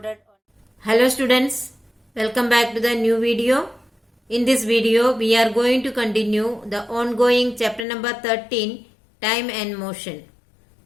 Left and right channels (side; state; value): right; drops out; at 7.9 s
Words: Hello students, welcome back to the new video. In this video, we are going to continue the ongoing chapter number 13, Time and Motion.